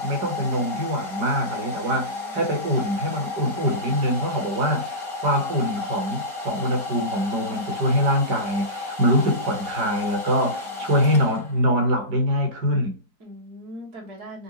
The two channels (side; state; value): left; late; 4.2 ms